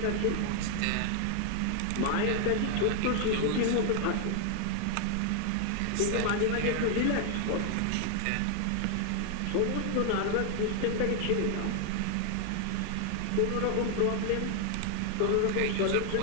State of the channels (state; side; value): different; both; correlation 0.00